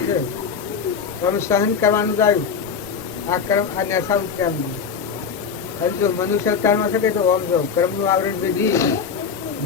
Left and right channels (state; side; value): quieter; right; 6.2 dB